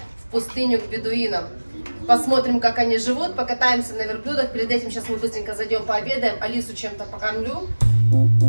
в пустыню к бедуинам. Посмотрим, как они живут, покатаемся на верблюдах. Перед этим сейчас мы быстренько зайдем пообедаем, Алису чем-то покормлю.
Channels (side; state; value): both; inverted; correlation -1.00